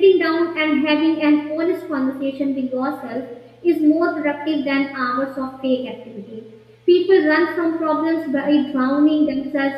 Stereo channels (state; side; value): identical; both; correlation 1.00